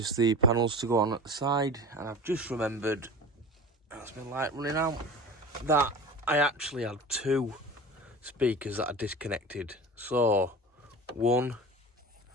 the panels to go on at the side. And I've just remembered, that's my light running out, that I actually had 2 speakers that I disconnected. So one,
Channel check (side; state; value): both; normal; correlation 0.35